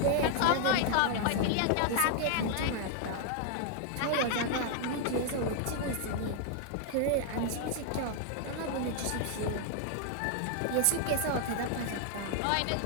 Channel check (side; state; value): both; different; correlation 0.00